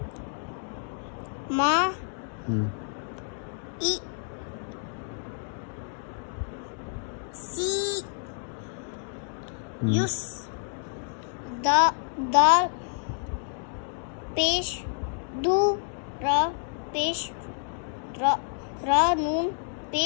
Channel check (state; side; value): silent; right; 59 dB below the other